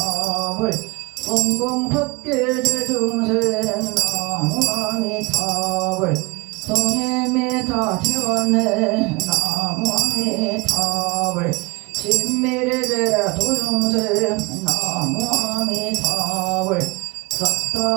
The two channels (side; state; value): left; quieter; 26.1 dB